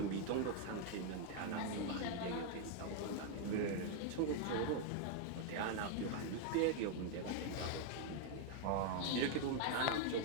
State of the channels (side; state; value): both; different; correlation 0.00